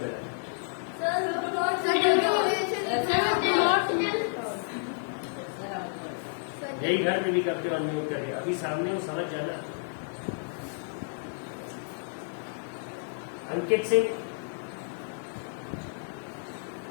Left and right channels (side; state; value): right; silent; digital silence